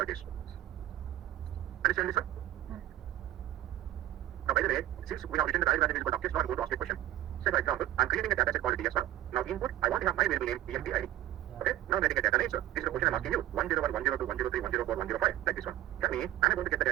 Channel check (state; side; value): quieter; left; 13.9 dB